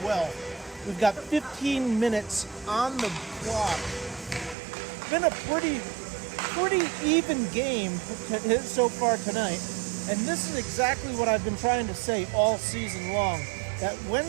well. We've got 15 minutes on the clock. Been a pretty even game so far tonight. And this is exactly what I've been trying to say all season long. That when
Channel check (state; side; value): drops out; left; at 4.5 s